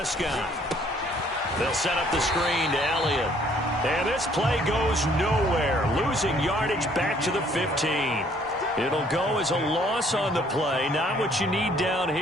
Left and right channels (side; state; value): both; normal; correlation 0.61